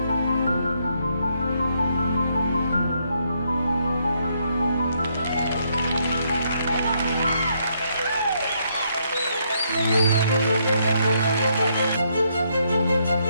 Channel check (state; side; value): inverted; both; correlation -0.74